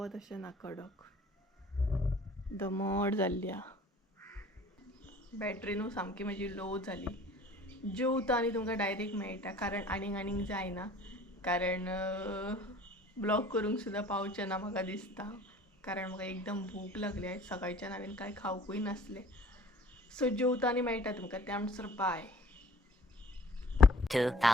अशें ना, कडक दमट जाल्ली आहा. बॅटरी न्हू सामकी म्हजी लो जाली. जेवता आनी तुमकां डायरेक्ट मेळटा, कारण आनीक जायना. कारण ब्लॉग करूंक सुद्दां पावचें ना म्हाका दिसता, कारण म्हाका एकदम भूक लागली. आयज सकाळच्यान हांवें कांय खावंकूय नासलें. सो जेवता आनी मेळटा तुमकां. त्या म्हणसर bye.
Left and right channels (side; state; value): both; normal; correlation 0.51